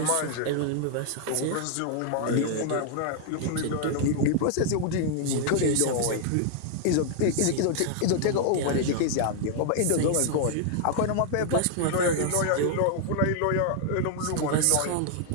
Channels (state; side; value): different; both; correlation 0.00